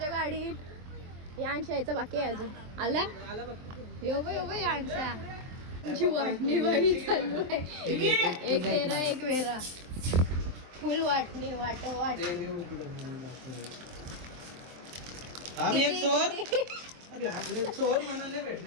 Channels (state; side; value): late; left; 23 ms